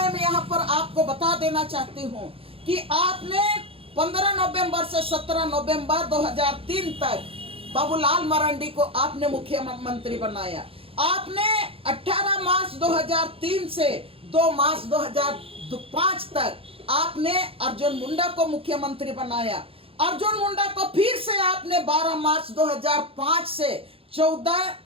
यहाँ पर आपको बता देना चाहती हूँ कि आपने 15 नवंबर से 17 नवंबर 2003 तक बाबूलाल मरांडी को आपने मुख्यमंत्री बनाया। आपने 18 मार्च 2003 से 2 मार्च 2005 तक आपने अर्जुन मुंडा को मुख्यमंत्री बनाया। अर्जुन मुंडा को फिर से आपने 12 मार्च 2005 से 14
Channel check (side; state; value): left; late; 0.27 ms